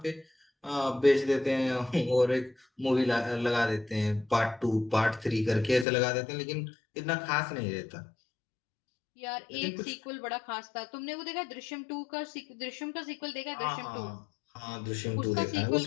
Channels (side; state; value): right; drops out; at 5.9 s